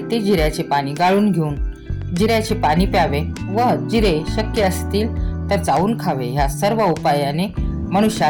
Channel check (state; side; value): identical; both; correlation 1.00